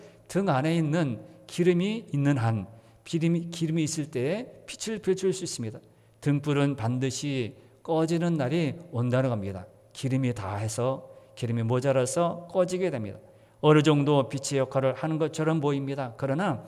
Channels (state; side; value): identical; both; correlation 1.00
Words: 등 안에 있는 기름이 있는 한 기름이 있을 때 빛을 비출 수 있습니다. 등불은 반드시 꺼지는 날이 온다는 겁니다. 기름이 모자라서 꺼지게 됩니다. 어느 정도 빛의 역할을 하는 것처럼 보입니다. 그러나